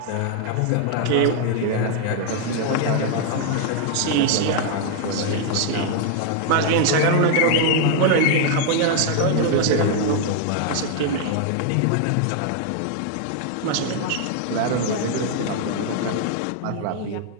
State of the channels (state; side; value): different; both; correlation 0.00